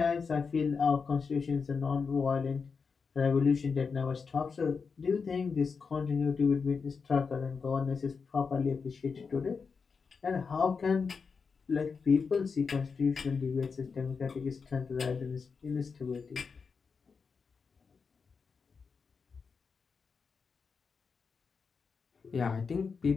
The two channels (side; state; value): right; quieter; 5.3 dB